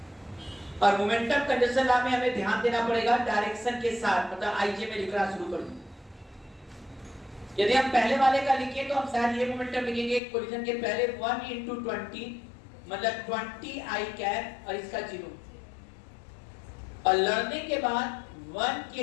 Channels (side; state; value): right; drops out; at 10.2 s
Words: और मोमेंटम कंजर्वेशन लॉ में हमें ध्यान देना पड़ेगा डायरेक्शन के साथ, मतलब आईजे में लिखना शुरू कर दूं। यदि हम पहले वाले का लिखें तो हम शायद ये मोमेंटम लिखेंगे कोलिजन के पहले 1 into 20 मतलब 20 I कैप और इसका 0, और लड़ने के बाद 1